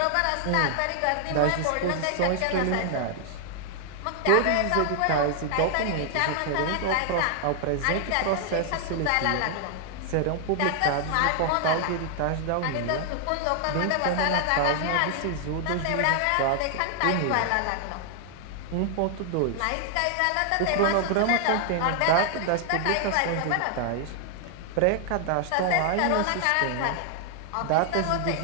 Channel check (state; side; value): different; both; correlation 0.00